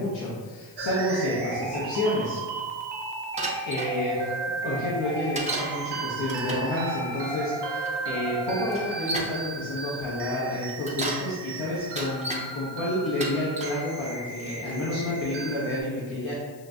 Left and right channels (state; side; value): noise; left; hiss, 24 dB below the sound